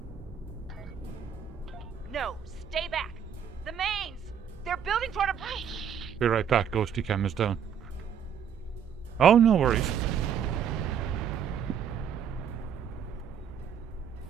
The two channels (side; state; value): left; quieter; 8.1 dB